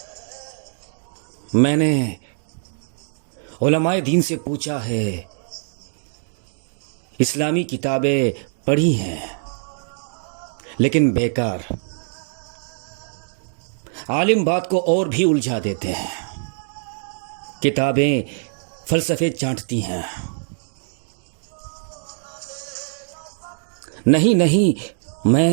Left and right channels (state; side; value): silent; left; digital silence